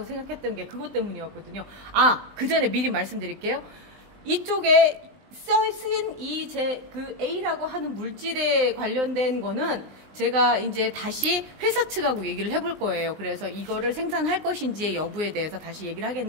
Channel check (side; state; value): left; late; 19 ms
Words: 생각했던 게 그것 때문이었거든요. 그 전에 미리 말씀드릴게요. 이쪽에 쓰인 그 A라고 하는 물질에 관련된 거는 제가 이제 다시 회사 측하고 얘기를 해볼 거예요. 그래서 이거를 생산할 것인지의 여부에 대해서 다시 얘기를